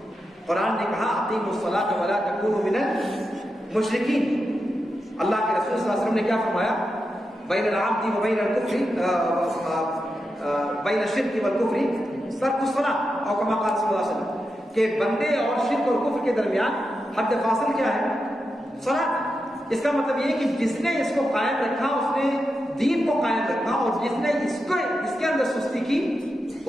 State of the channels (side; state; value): both; normal; correlation 0.88